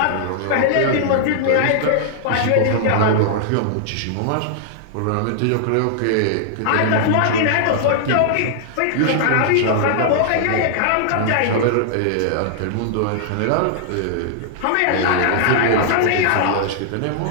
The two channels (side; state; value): both; different; correlation -0.01